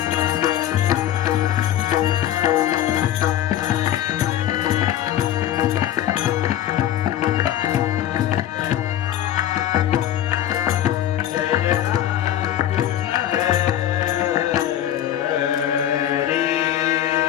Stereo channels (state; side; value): quieter; right; 11.7 dB